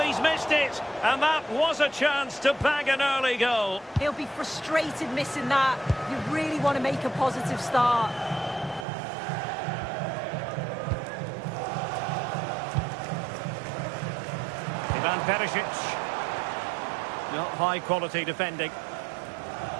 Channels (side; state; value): left; drops out; at 8.8 s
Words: he's missed it. And that was a chance to bag an early goal. He'll be frustrated missing that. You really want to make a positive start. Ivan Perisic. Not high quality defending.